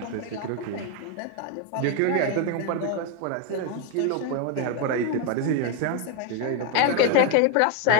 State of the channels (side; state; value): both; different; correlation 0.01